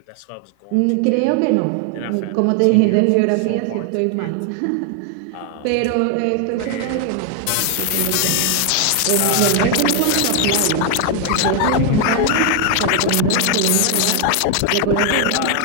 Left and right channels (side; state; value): both; different; correlation 0.01